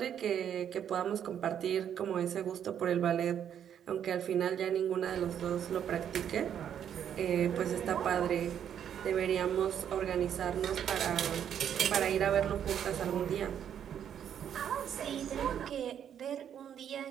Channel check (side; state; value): left; quieter; 9.2 dB